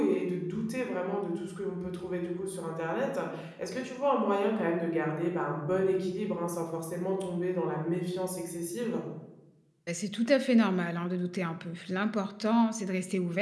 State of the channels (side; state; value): both; identical; correlation 1.00